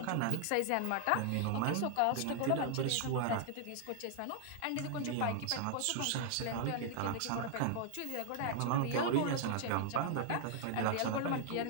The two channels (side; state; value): both; different; correlation 0.00